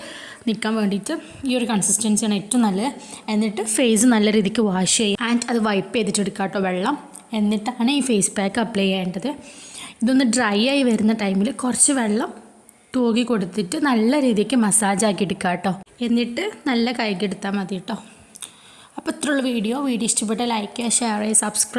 നിൽക്കാൻ വേണ്ടിയിട്ട് ഈ ഒരു കൺസിസ്റ്റൻസിയാണ് ഏറ്റവും നല്ലത്. എന്നിട്ട് ഫേസ് നല്ല രീതിക്ക് വാഷ് ചെയ്യുക ആൻഡ് അത് വൈപ്പ് ചെയ്തിട്ടെടുക്കുക കേട്ടോ വെള്ളം. എന്നിട്ടാണ് ഈ ഫേസ് പാക്ക് അപ്ലൈ ചെയ്യേണ്ടത്. ഇതൊന്ന് ഡ്രൈ ആയി വരുന്ന ടൈമിൽ കുറച്ച് വെള്ളം തൂകി കൊടുത്തിട്ട് നല്ല രീതിക്ക് മസാജ് ആക്കി എടുക്കുക കേട്ടോ. എന്നിട്ട് നല്ല കൈകെടുത്താൽ മതി കേട്ടോ. അപ്പോൾ ഇത്രയുള്ള വീഡിയോ ഇഷ്ടപ്പെട്ടാൽ ലൈക്ക് ചെയ്യുക, ഷെയർ ചെയ്യുക,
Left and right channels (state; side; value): identical; both; correlation 1.00